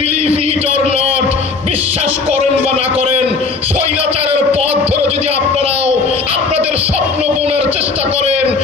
ইট অর নট, বিশ্বাস করেন বা না করেন, স্বৈরাচারের পথ ধরে যদি আপনারাও আপনাদের স্বপ্ন বোনার চেষ্টা করেন,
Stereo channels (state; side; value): quieter; right; 4.4 dB